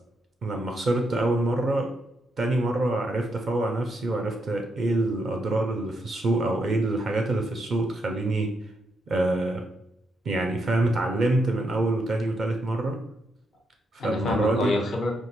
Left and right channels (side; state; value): both; normal; correlation 0.80